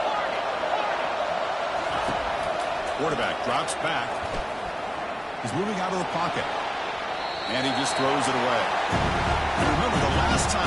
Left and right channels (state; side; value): identical; both; correlation 1.00